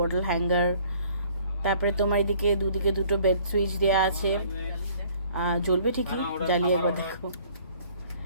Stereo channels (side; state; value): both; inverted; correlation -0.57